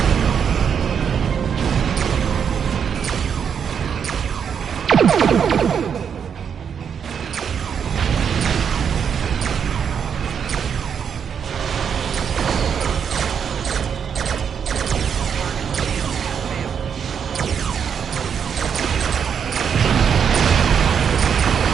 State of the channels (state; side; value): quieter; left; 7.4 dB